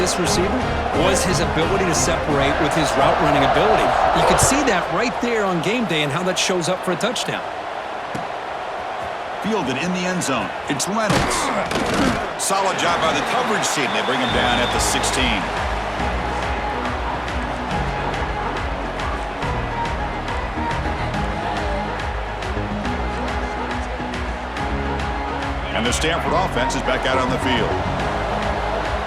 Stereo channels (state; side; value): identical; both; correlation 1.00